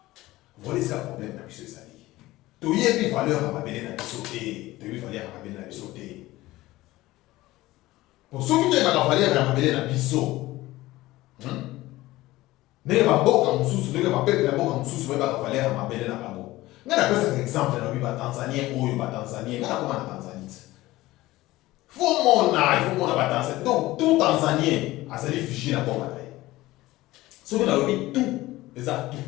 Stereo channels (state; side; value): quieter; right; 17.8 dB